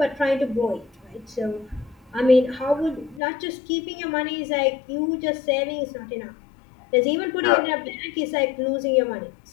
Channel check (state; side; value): drops out; right; at 3.2 s